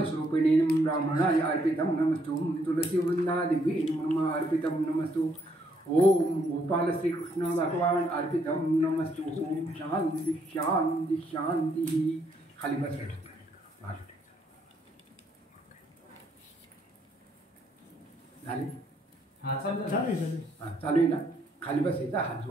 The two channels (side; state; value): both; normal; correlation 0.71